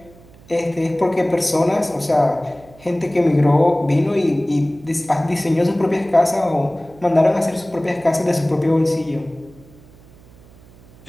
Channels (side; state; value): right; noise; hum, 24 dB below the sound